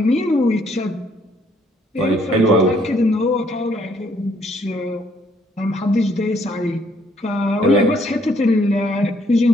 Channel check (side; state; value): both; normal; correlation 0.67